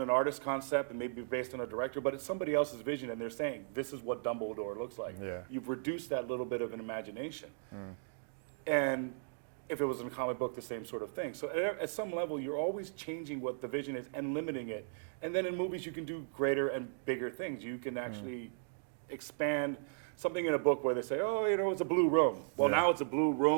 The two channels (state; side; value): silent; left; digital silence